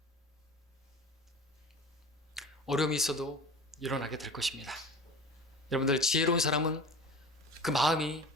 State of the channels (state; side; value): normal; both; correlation 0.37